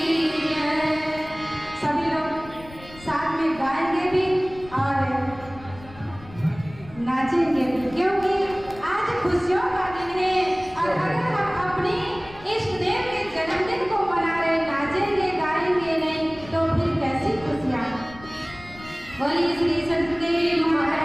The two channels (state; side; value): noise; left; rumble, 19 dB below the sound